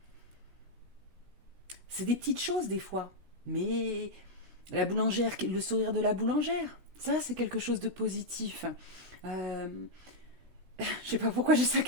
C'est des petites choses des fois, mais la boulangère, le sourire de la boulangère, ça c'est quelque chose de positif. Je sais pas pourquoi j'ai ça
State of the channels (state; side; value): late; left; 17 ms